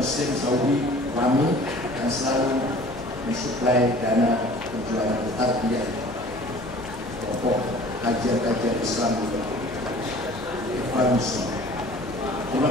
Saudi WAMI, yang selalu mensuplai dana perjuangan tarbiyah pokok kajian-kajian Islam di Ikhwan Muslim. Terima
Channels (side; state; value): both; normal; correlation 0.48